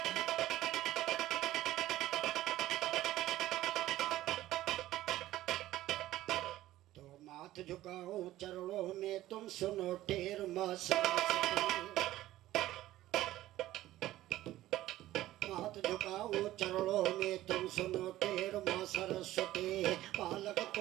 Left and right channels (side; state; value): left; quieter; 15.1 dB